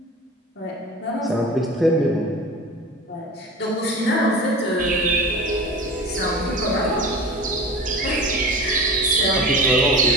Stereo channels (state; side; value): normal; both; correlation 0.34